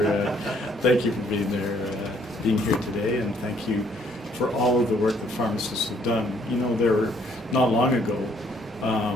thank you for being there, being here today, and thank you for all of the work that pharmacists have done. You know, there not long ago,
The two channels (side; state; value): both; normal; correlation 0.65